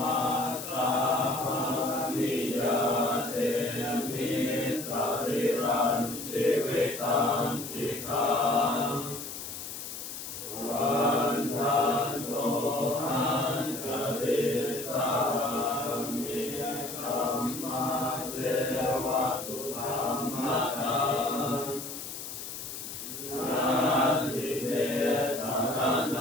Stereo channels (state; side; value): noise; left; hiss, 8 dB below the sound